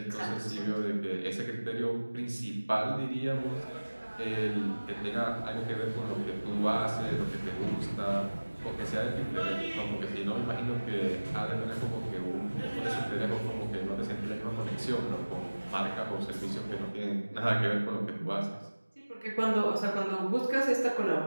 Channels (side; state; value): both; inverted; correlation -1.00